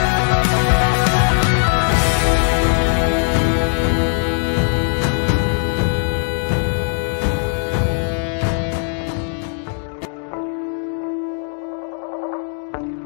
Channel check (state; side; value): silent; right; digital silence